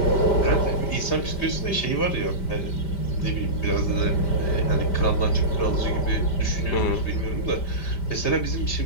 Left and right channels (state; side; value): late; right; 5.1 ms